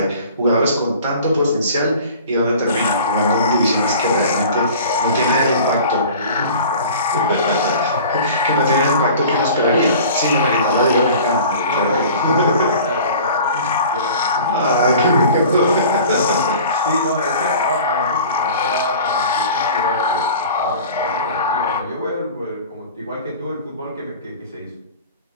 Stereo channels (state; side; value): inverted; both; correlation -0.43